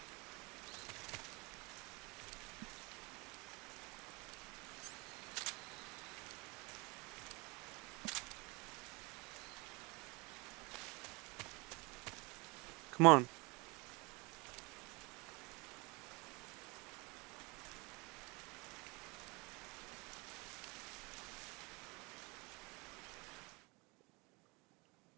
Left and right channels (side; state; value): left; quieter; 27.3 dB